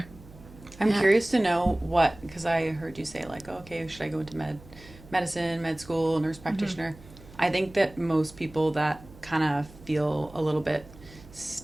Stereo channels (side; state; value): right; noise; hum, 21 dB below the sound